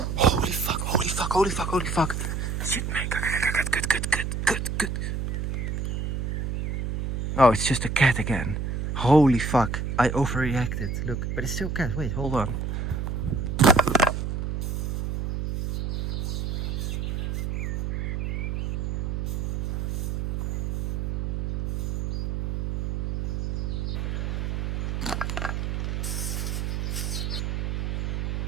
Holy fuck, holy fuck, holy fuck, holy fuck. Shit, man. Good. Oh, it's just a cat again. Holy fuck. I overreacted. Look, but it's still a cat. Wait, hold on.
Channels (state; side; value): noise; right; hum, 1 dB below the sound